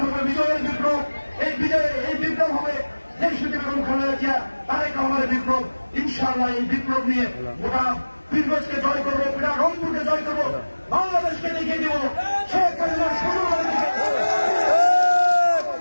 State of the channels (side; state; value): both; inverted; correlation -1.00